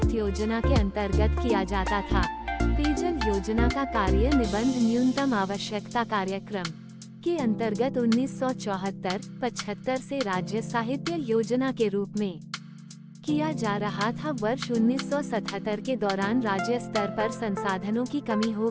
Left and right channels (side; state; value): both; identical; correlation 1.00